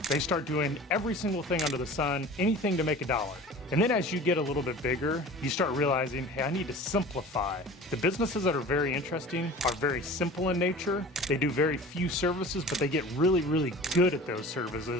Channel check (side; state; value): both; normal; correlation 0.40